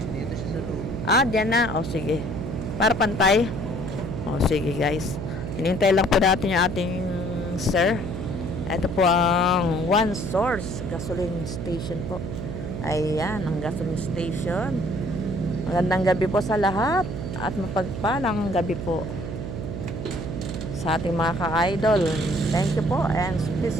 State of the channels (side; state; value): right; noise; hum, 6 dB below the sound